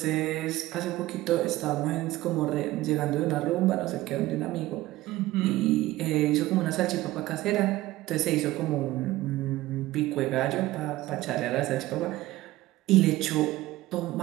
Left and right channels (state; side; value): quieter; left; 17.2 dB